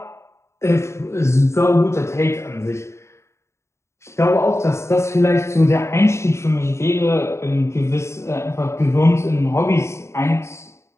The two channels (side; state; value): right; late; 0.13 ms